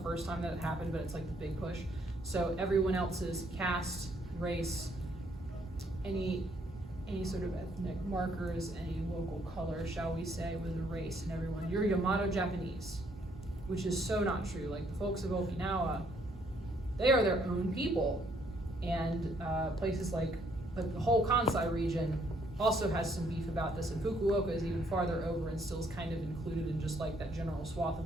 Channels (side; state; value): both; normal; correlation 0.68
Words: first time that it happened, but it's like the big push. So everyone else's caste, race, any sort of ethnic markers, any local color, shall we say, was a race, and everyone, you're Yamato Japanese, which is so not true. Like the folks of Okinawa, they are their own people, and places like the whole Kansai region also has some beef about this, and Fukuoka is even farther over and still is kind of included in just like that general swath